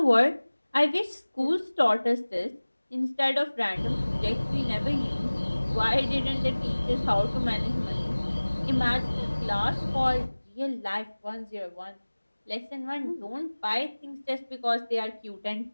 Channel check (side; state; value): both; inverted; correlation -1.00